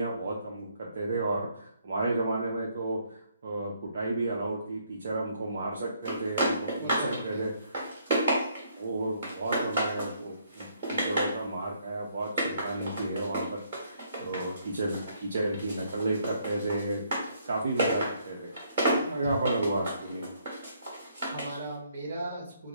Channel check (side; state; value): both; inverted; correlation -0.69